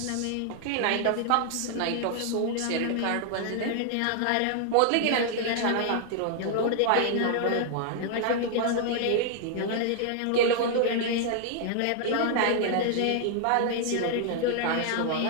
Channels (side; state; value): both; different; correlation 0.00